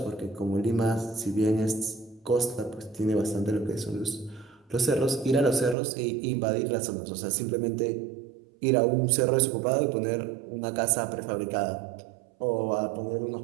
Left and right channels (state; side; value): drops out; left; at 5.8 s